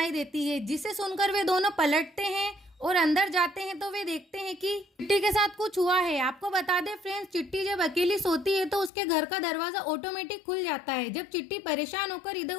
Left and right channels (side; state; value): right; drops out; at 8.9 s